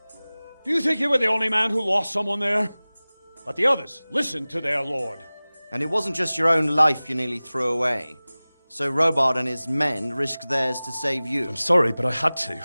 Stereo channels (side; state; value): both; inverted; correlation -0.99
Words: Do you think you were the only man who lost someone there? But the others listened to their lord. And it wasn't just your own life you nearly threw away. So Robard and his men risked theirs to save you. I'm sorry, but I had to.